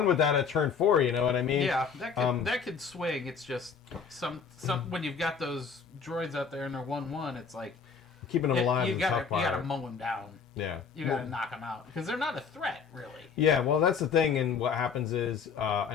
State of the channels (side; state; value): right; quieter; 6.0 dB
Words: with that at turn 4, you know what I mean? Yeah, that could swing. It's just some when you've got those droids out there and they're 1/1, it's like keeping them alive. You gotta mow them down. Yeah, you gotta knock them out because they're not a threat, really. Yeah, well, that's the thing, and what happens is, and